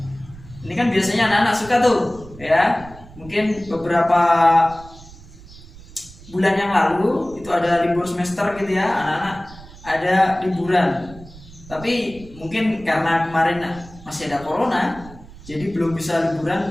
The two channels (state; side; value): noise; right; rumble, 19 dB below the sound